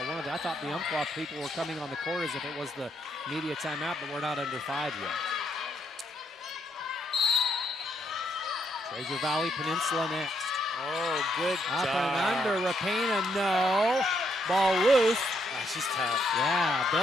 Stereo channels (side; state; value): both; normal; correlation 0.75